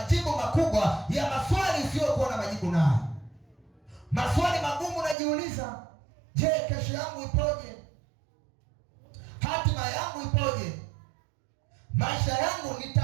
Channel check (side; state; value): left; drops out; at 5.2 s